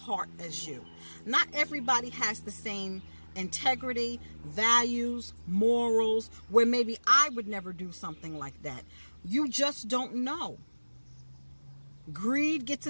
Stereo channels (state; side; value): inverted; both; correlation -1.00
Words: as you. Not everybody has the same integrity, values, morals, where maybe I would never do something like that. You just don't know. Greed gets